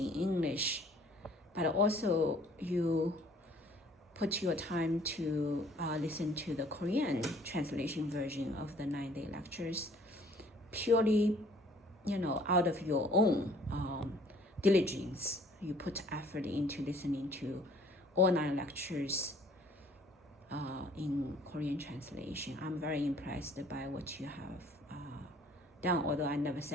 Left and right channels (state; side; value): normal; both; correlation 0.57